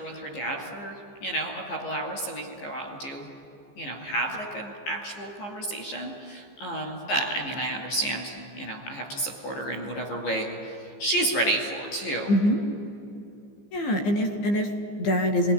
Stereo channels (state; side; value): late; right; 15 ms